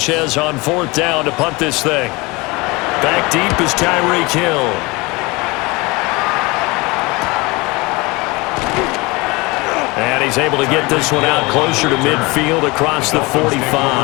on fourth down to punt this thing. Back deep is Tyreek Hill. And he's able to get this one out closer to midfield across the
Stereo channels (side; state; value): right; quieter; 24.5 dB